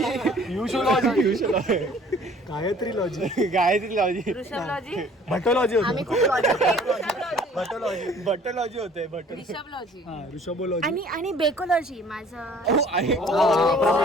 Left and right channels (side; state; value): both; normal; correlation 0.53